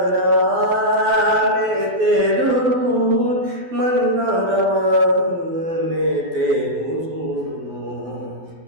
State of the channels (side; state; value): left; late; 12 ms